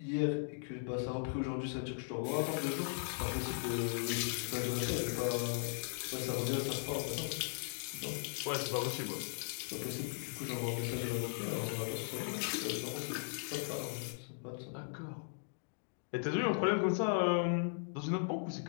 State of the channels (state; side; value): silent; right; digital silence